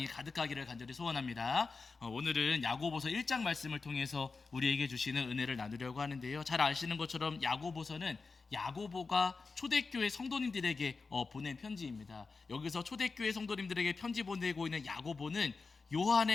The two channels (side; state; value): right; quieter; 4.3 dB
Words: 가득하기를 간절히 소원합니다. 오늘은 야고보서 1장 말씀을 통해서 우리에게 주시는 은혜를 나누려고 하는데요. 잘 아시는 것처럼 야고보서는 야고보가 초대교회 성도님들에게 보낸 편지입니다. 여기서 초대교회 성도님들에게 편지 보내고 있는 야고보는